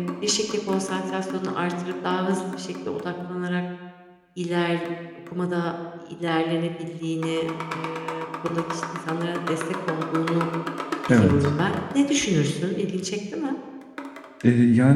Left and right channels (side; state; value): both; identical; correlation 1.00